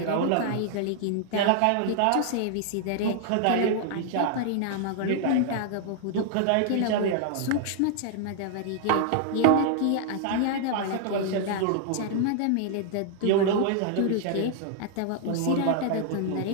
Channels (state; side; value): different; both; correlation -0.01